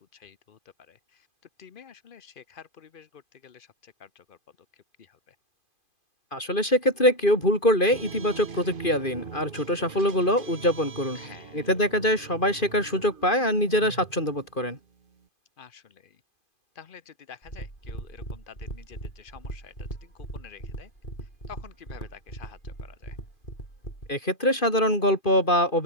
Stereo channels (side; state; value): right; late; 2.5 ms